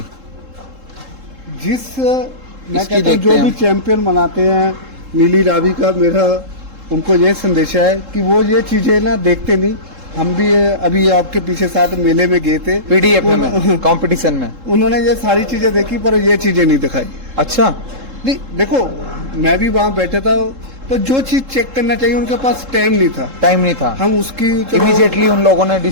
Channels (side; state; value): left; late; 3.7 ms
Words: जिस मैं इसकी कहता हूँ देखते जो हैं भी हम। चैंपियन मनाते हैं नीली रावी का, मेरा उनको ये संदेश है कि वो ये चीजें ना देखते नहीं। हम भी अभी आपके पीछे साथ मेले में गए थे, पीडीएफ में, कंपटीशन में। उन्होंने ये सारी चीजें देखी पर ये चीजें नहीं दिखाई। अच्छा, नहीं देखो, मैं भी वहां बैठा था, पर जो चीज चेक करना चाहिए उनके पास टाइम नहीं था। टाइम नहीं था। हम उसकी इमीडिएटली उन लोगों ने